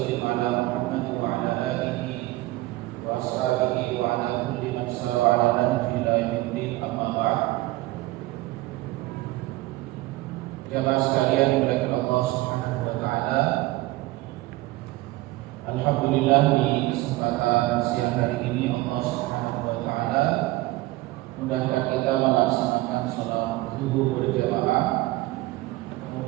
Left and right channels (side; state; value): left; quieter; 19.1 dB